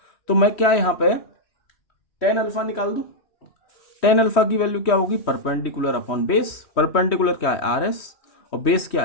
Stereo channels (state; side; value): late; right; 3.1 ms